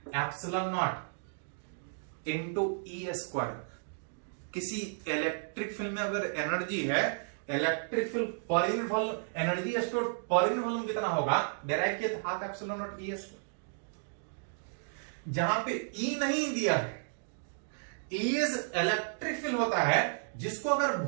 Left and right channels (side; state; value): left; silent; digital silence